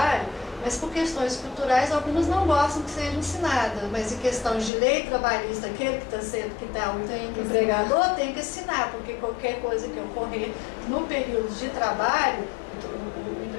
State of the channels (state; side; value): drops out; right; at 4.7 s